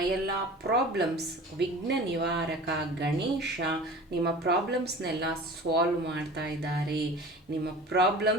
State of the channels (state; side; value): normal; both; correlation 0.39